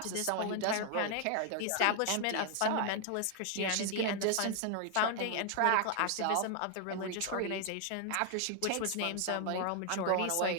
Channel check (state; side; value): different; both; correlation 0.00